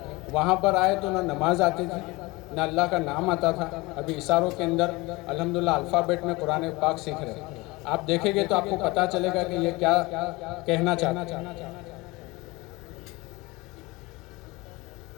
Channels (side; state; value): right; quieter; 22.9 dB